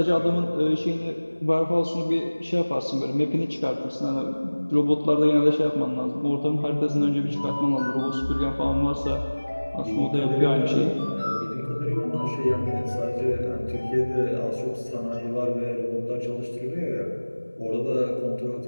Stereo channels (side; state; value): both; inverted; correlation -1.00